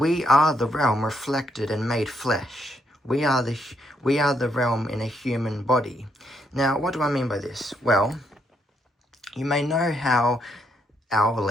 are the realm reflected and made flesh. We are the realm in a human body. Now, what do I mean by this? Well, you may know how our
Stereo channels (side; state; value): both; normal; correlation 0.75